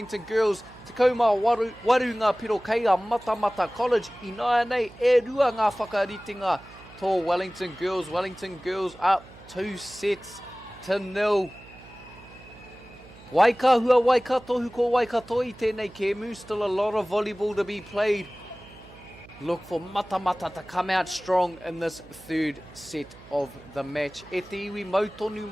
girls, te kaumā waru ngā piro kei a Matamata College. I nāia nei e rua ngā whakaritinga tō Wellington girls. Wellington girls up 2-0. Waikahua Waikatohu ko Waikato I tēnei kēmu. Still a lot of volleyball to be played. Look for Matamata to come out strong in this third set of the match. E te iwi mautonu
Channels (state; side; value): noise; right; hum, 21 dB below the sound